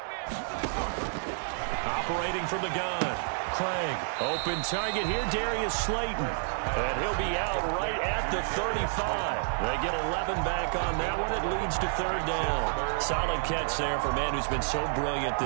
Operating from the gun. Craig, open target here, Darius Slayton. And he'll be out right at the 35. They get 11 back on that one. It leads to 3rd down. Solid catch there for a man who's been so brilliant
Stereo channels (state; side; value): silent; left; digital silence